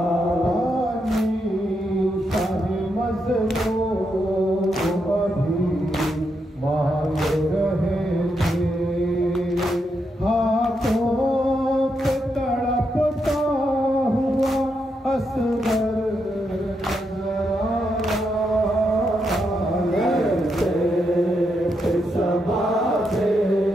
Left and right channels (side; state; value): both; normal; correlation 0.82